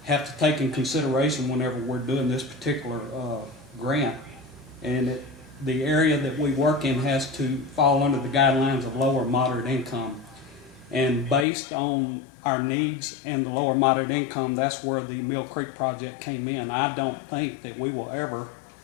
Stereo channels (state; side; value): drops out; right; at 11.5 s